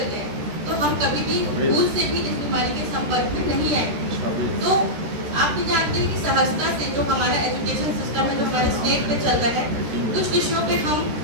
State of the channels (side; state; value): left; late; 13 ms